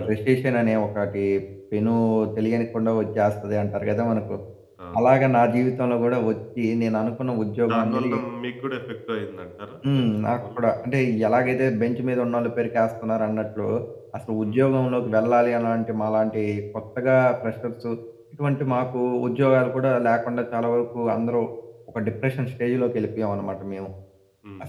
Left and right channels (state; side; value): identical; both; correlation 1.00